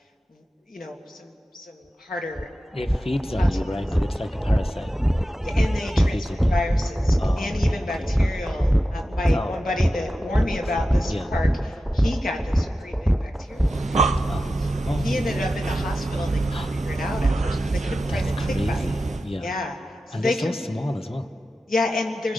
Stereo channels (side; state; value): both; normal; correlation 0.92